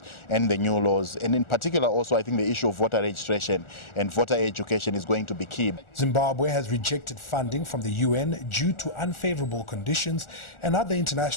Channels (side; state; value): right; late; 1.4 ms